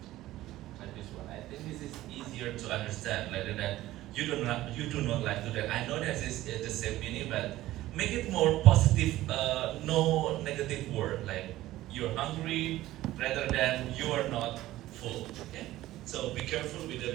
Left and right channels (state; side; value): quieter; left; 15.7 dB